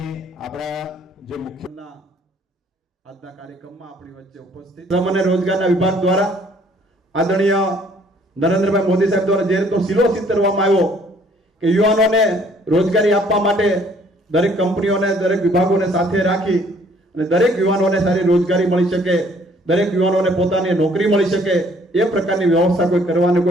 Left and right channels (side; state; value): both; normal; correlation 0.61